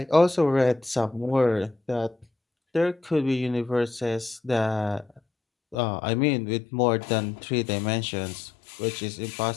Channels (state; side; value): drops out; right; at 5.8 s